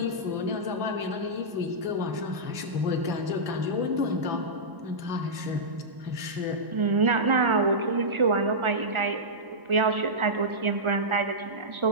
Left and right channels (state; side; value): late; left; 1.0 ms